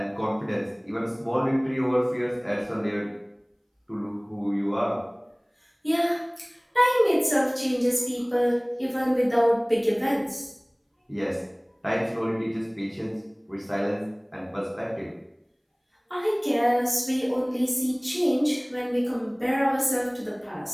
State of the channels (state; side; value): identical; both; correlation 1.00